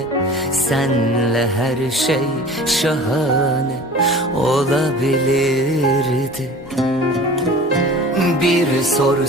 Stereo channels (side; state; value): left; noise; hum, 30 dB below the sound